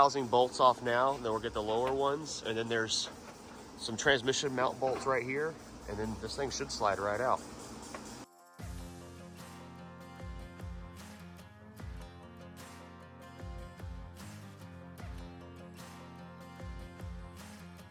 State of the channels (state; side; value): identical; both; correlation 1.00